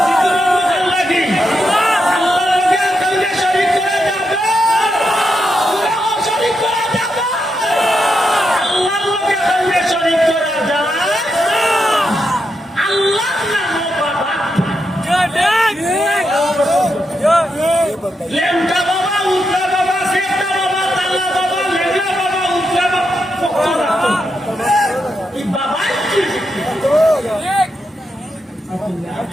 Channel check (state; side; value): normal; both; correlation 0.84